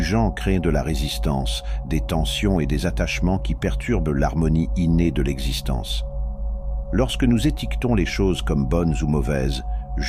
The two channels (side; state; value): both; identical; correlation 1.00